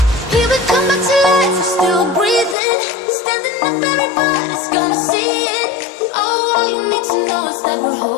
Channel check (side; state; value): right; drops out; at 2.6 s